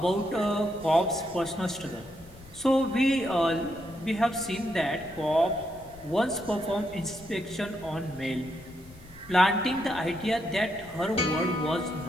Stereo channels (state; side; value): noise; left; rumble, 22 dB below the sound